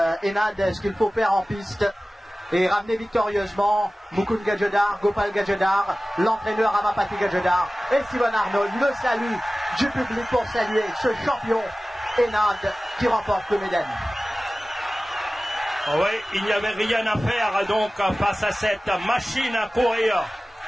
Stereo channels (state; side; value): normal; both; correlation 0.97